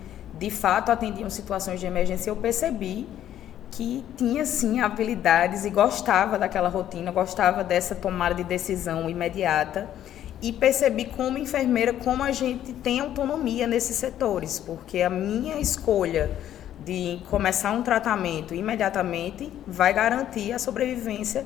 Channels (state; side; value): quieter; right; 11.3 dB